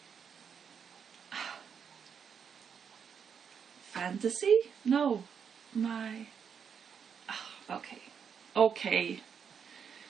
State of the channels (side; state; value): left; quieter; 7.1 dB